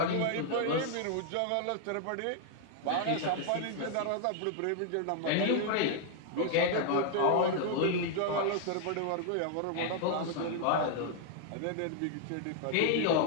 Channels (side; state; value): both; different; correlation 0.00